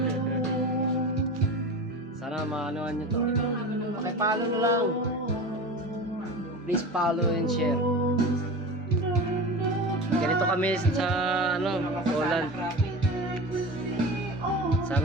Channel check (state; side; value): normal; both; correlation 0.30